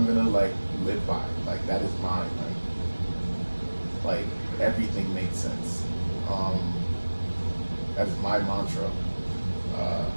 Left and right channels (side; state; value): both; inverted; correlation -1.00